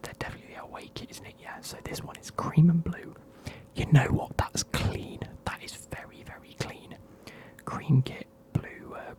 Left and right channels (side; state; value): both; identical; correlation 1.00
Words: their away kit, isn't it? Yeah, so this one is cream and blue. You know what, that's clean. That is very, very clean. Cream kit, blue